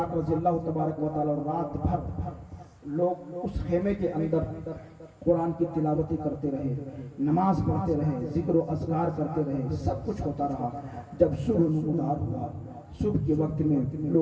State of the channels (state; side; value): identical; both; correlation 1.00